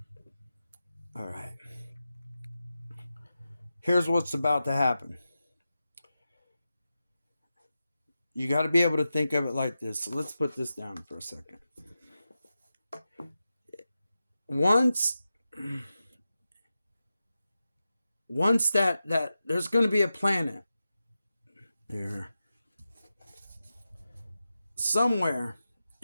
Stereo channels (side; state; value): both; inverted; correlation -0.92